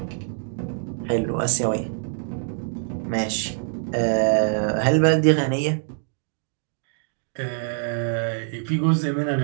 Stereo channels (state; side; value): silent; left; digital silence